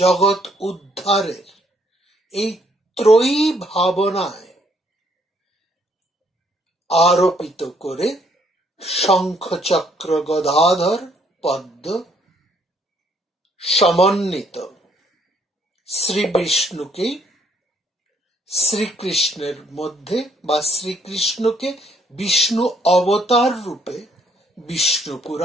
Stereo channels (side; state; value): both; normal; correlation 0.67